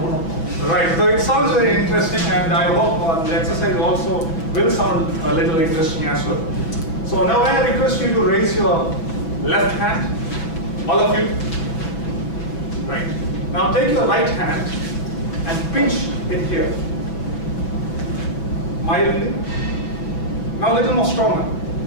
Right, so it sounds very interesting, and I hope the exercise also will sound a little interesting as well. So now I request you to raise your left hand, all of you. Right. Now take your right hand and pinch it here. Mildly. Now a little more stronger.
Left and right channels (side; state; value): right; late; 6.1 ms